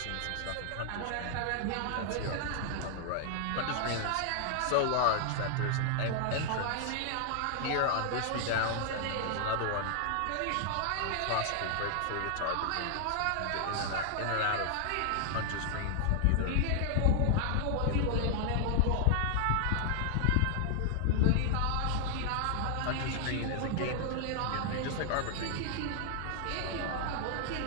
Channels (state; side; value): different; both; correlation 0.00